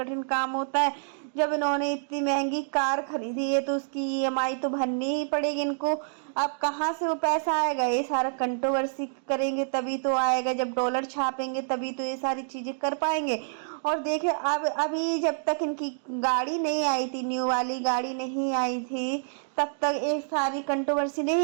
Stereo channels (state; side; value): silent; left; digital silence